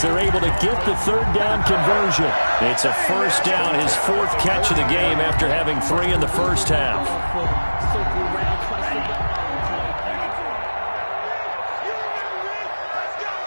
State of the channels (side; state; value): both; inverted; correlation -1.00